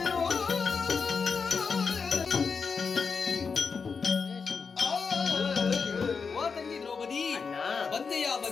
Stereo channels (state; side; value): quieter; right; 5.4 dB